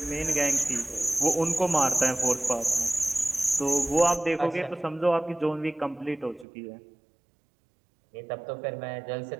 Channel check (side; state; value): left; drops out; at 6.5 s